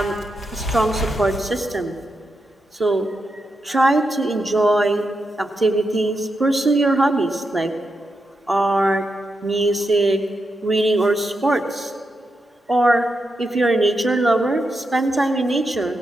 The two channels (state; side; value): normal; both; correlation 0.86